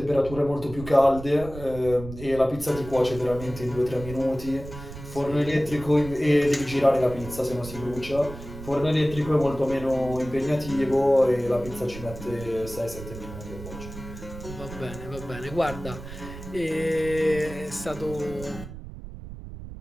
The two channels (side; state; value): right; noise; rumble, 12 dB below the sound